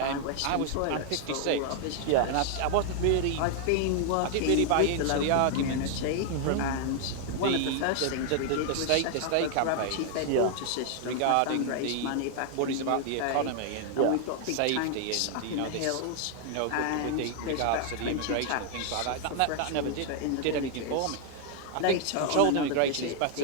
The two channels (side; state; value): both; different; correlation 0.00